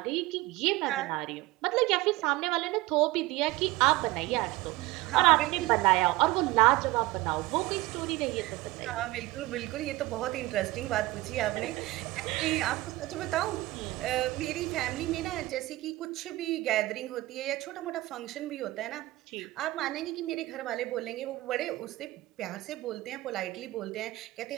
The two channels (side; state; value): left; quieter; 19.1 dB